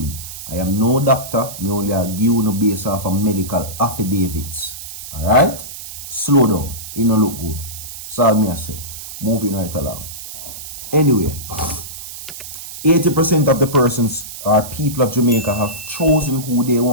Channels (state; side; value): noise; right; hiss, 11 dB below the sound